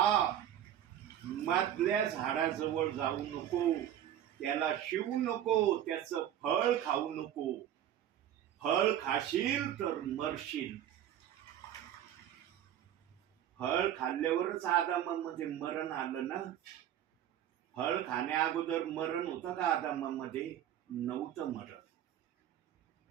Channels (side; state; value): left; quieter; 11.0 dB